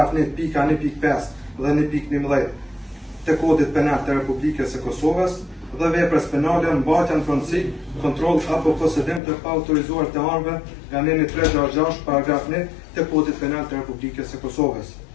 1.1.5 dhe 1.11 të kodit penal të Republikës së Kosovës dhe veprës penale mbajtja në pronësi, kontroll apo posedim të paautorizuar të armëve nga neni 366, paragraf 1 të kodit penal të Republikës së Kosovës.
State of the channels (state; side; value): drops out; right; at 9.2 s